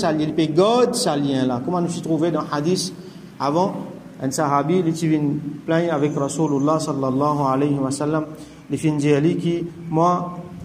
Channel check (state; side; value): identical; both; correlation 1.00